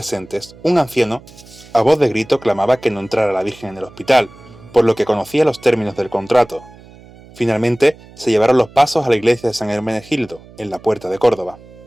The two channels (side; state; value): right; noise; hum, 22 dB below the sound